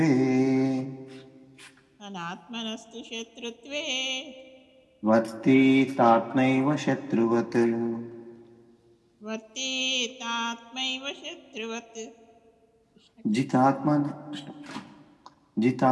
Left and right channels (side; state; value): both; identical; correlation 1.00